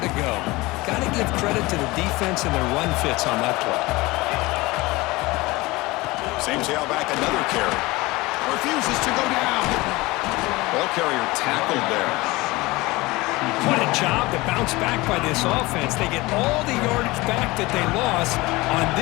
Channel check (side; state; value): right; quieter; 21.5 dB